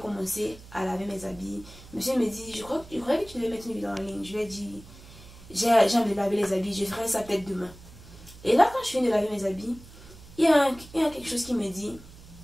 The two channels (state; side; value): noise; right; hum, 19 dB below the sound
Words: à laver mes habits. Monsieur me dit, je crois que tu devais mettre une vidéo en ligne. Je lui ai dit, j'ai envie de laver les habits. Je ferai ça peut-être demain. Et là, quand je finis de laver mes habits, il y a quelque chose qui me dit,